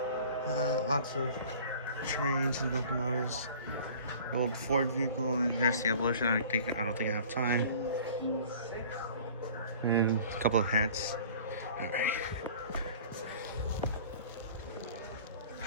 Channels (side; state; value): both; inverted; correlation -0.46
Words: Lots of trains and locomotives. The old Ford vehicle, and there's the Evolution. I don't think I have time. And a couple of hats. All right.